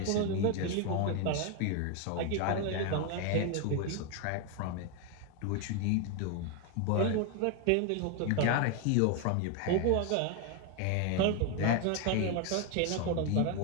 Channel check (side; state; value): both; different; correlation 0.01